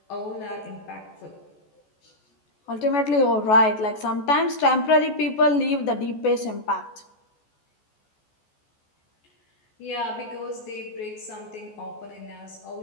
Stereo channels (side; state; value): right; late; 14 ms